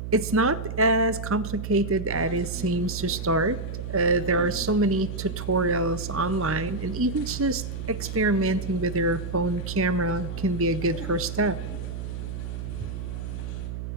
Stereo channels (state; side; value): noise; right; hum, 6 dB below the sound